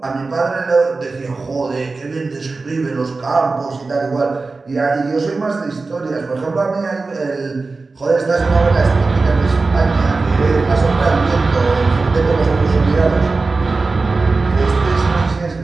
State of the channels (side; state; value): left; quieter; 3.8 dB